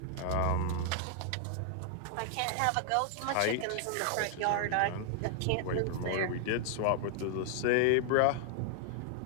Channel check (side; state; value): both; different; correlation 0.00